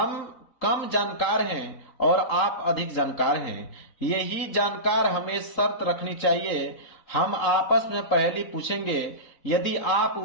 कम जानकार हैं और आप अधिक जानकार हैं। यही जानकार हमें शर्त रखनी चाहिए, हम आपस में पहेली पूछेंगे, यदि आप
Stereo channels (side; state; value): right; late; 3.8 ms